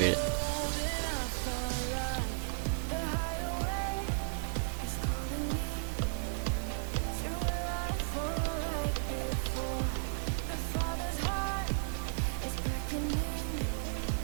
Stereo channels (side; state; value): left; silent; digital silence